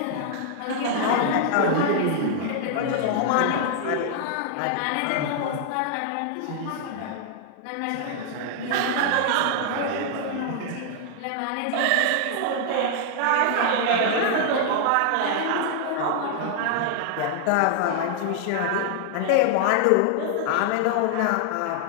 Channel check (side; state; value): both; different; correlation 0.00